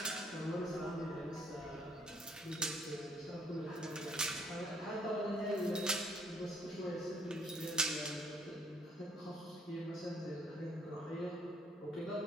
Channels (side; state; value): both; normal; correlation 0.65